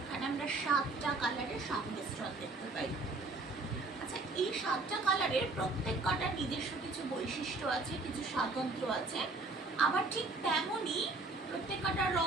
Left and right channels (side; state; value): left; quieter; 3.2 dB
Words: আমরা 7টা কালারের সংমিশ্রণ দেখতে পাই। আচ্ছা, এই 7টা কালারের প্রত্যেক কটার নিজস্ব কিছু বৈশিষ্ট্য আছে, কিছু স্বাতন্ত্র আছে। আবার ঠিক তেমনই প্রত্যেক কটা